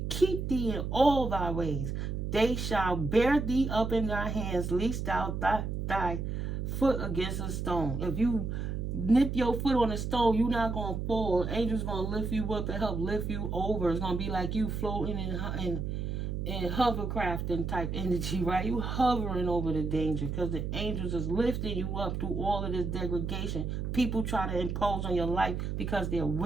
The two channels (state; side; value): noise; right; hum, 3 dB below the sound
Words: keep thee in all thy ways. They shall bear thee up in their hands, lest thou thy foot against a stone. If you nip your foot on a stone, you're not going to fall. Angels going to lift you up and help lift you over. It's going to be like you floating in hovercraft and type energy, right? You hovering over the danger because the angels is lifting you up through all of this degradation. People try to impose on your life because they're